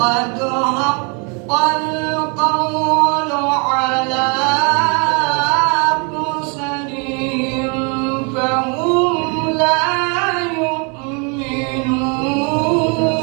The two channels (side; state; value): left; quieter; 34.5 dB